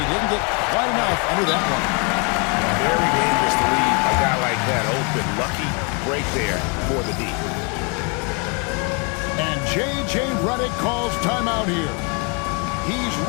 didn't get quite enough under that one. Very dangerous to leave a guy like that open. Lucky break there for the D. And J.J. Redick calls timeout here. He's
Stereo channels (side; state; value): right; quieter; 34.4 dB